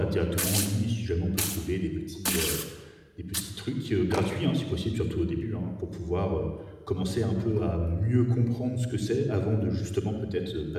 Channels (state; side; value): identical; both; correlation 1.00